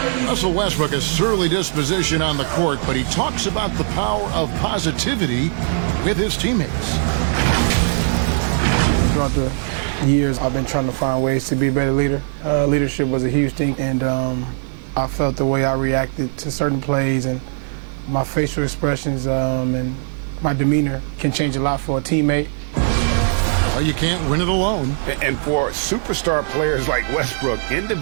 Russell Westbrook has surly disposition on the court, but he talks about the power of positivity with his teammates. Throughout the years, I've been trying to find ways to be a better leader. Leadership was a huge thing, and I felt the way I reacted to certain plays and my facial expressions and my demeanor can change a lot for a teammate. Well, you can't win it alone. And for superstar players like Westbrook,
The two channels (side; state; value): left; silent; 62 dB below the other